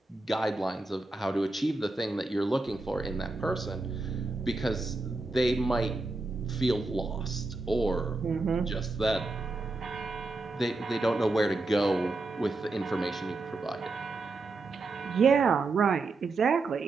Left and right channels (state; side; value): quieter; left; 3.4 dB